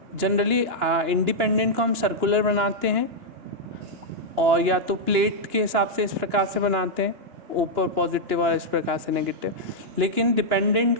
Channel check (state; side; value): late; left; 2.9 ms